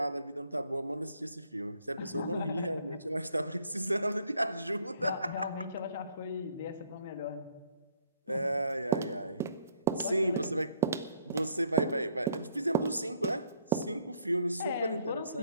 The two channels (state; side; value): inverted; both; correlation -0.64